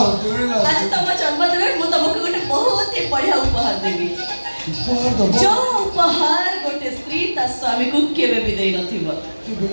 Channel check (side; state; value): both; inverted; correlation -1.00